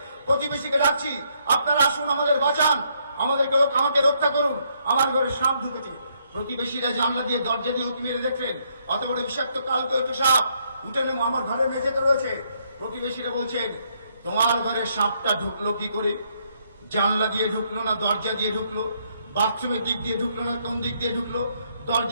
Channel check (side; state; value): both; inverted; correlation -0.72